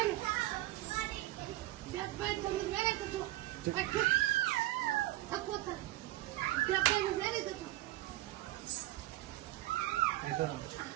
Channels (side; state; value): left; quieter; 17.0 dB